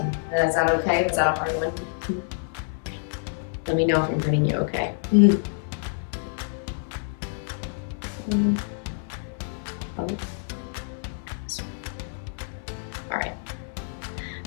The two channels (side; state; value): right; silent; 57 dB below the other